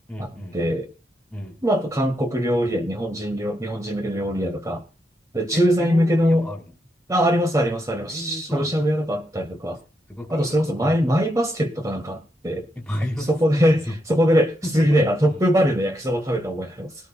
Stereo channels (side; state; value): both; normal; correlation 0.81